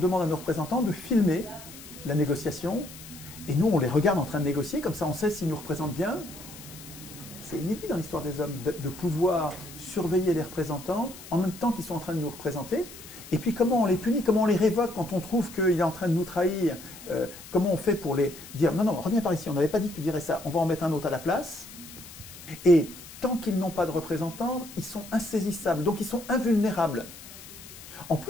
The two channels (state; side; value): noise; left; hiss, 16 dB below the sound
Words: à nos représentants de filmer la négociation? Et nous, on les regarde en train de négocier, comme ça on sait s'ils nous représentent bien. C'est inédit dans l'histoire des hommes de pouvoir surveiller les représentants en même temps qu'ils sont en train de nous représenter. Et puis comment on les punit, comment on les révoque quand on trouve qu'il est en train de nous trahir, comment on fait pour les dire « Non, non, reviens par ici, on n'avait pas dit que tu dirais ça, on va en mettre un autre à la place ». Et tant qu'ils n'ont pas de représentants, ils sont insaisissables, donc ils sont invulnérables. En